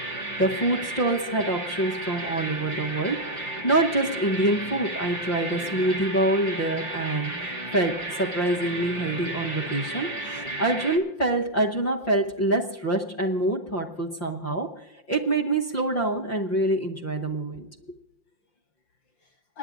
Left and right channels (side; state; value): right; late; 5.7 ms